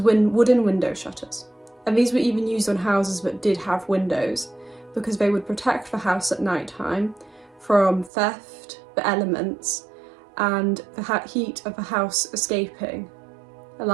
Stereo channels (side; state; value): left; drops out; at 8.1 s